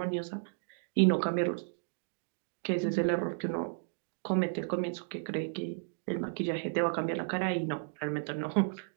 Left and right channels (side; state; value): left; silent; digital silence